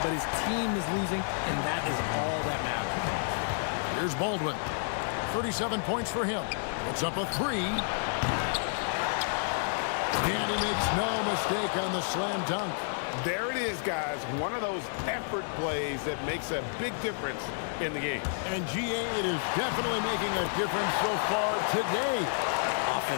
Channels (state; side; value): silent; right; digital silence